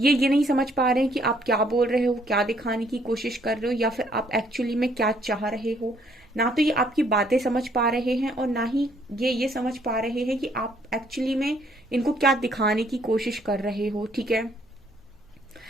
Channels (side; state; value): both; normal; correlation 0.66